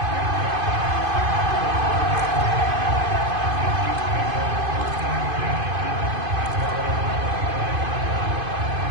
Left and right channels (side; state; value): left; late; 2.5 ms